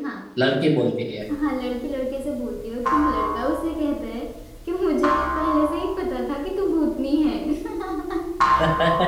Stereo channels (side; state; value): both; identical; correlation 1.00